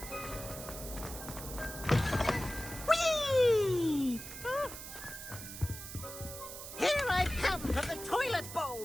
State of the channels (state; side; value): noise; right; hiss, 10 dB below the sound